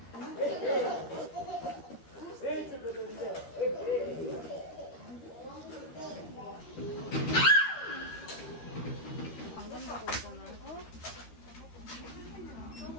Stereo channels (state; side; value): late; right; 13 ms